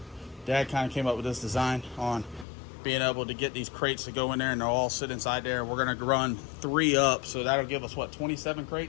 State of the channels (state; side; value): drops out; right; at 2.5 s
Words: kind of came up with this design on being able to get these crates to go in there, and they'll all sit inside there. We're gonna run 3 up, so that'll give us what, 27